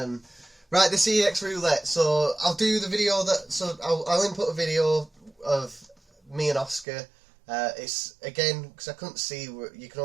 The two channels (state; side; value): drops out; left; at 6.9 s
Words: Right, the CEX Roulette. So I'll do the video I'll input a video of me and Oscar. It's again, because I couldn't see, you can